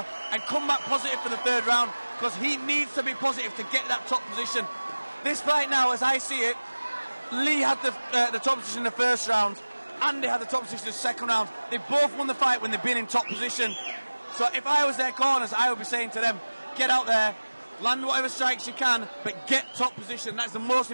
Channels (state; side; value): inverted; both; correlation -1.00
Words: and come back positive for the third round, because he needs to be positive to get that top position. This fight now, as I see it, Lee had the top position in the first round, Andy had the top position in the second round. They both won the fight when they've been in top position. So if I was their corners, I would be saying to them, get out there, land whatever strikes you can, but get top position. That's the most